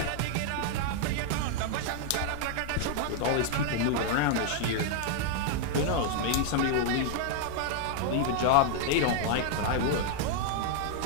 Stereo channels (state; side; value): different; both; correlation 0.00